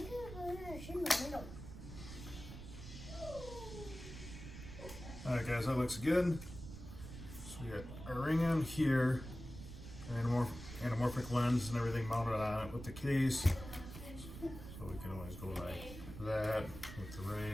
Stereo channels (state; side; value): noise; right; rumble, 11 dB below the sound